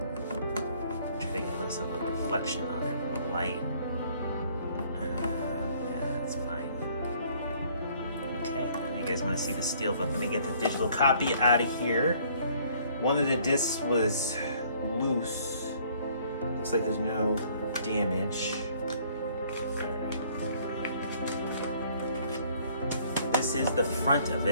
try to get less of a reflection on it from the light. Yeah, that's fine. Okay, and you guys want to see the steelbook. Let me get the digital copy out of here. One of the discs was loose. Looks like there's no damage. This is the front of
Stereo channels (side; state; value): both; inverted; correlation -0.60